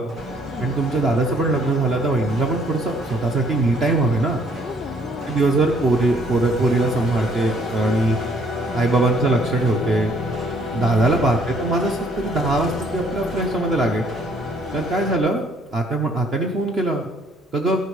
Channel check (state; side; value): normal; both; correlation 0.63